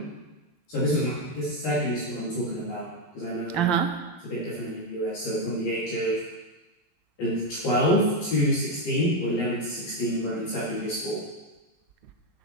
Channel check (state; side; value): late; right; 12 ms